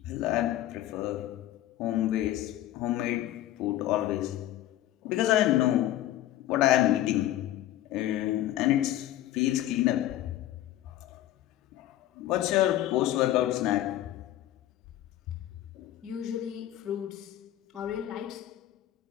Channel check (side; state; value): right; quieter; 13.6 dB